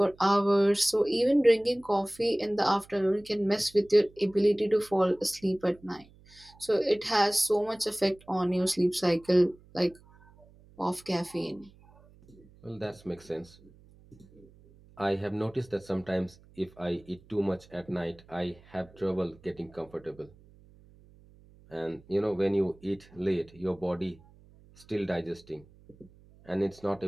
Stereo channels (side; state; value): right; noise; hum, 26 dB below the sound